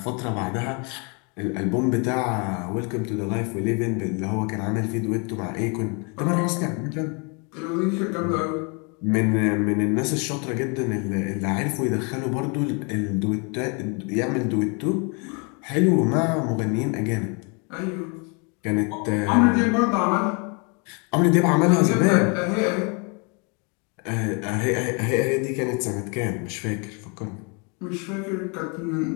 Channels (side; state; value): right; quieter; 34.0 dB